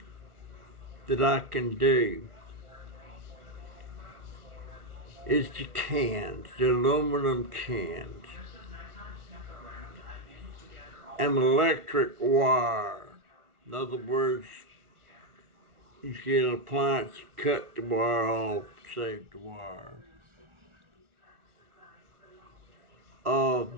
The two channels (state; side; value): late; left; 1.4 ms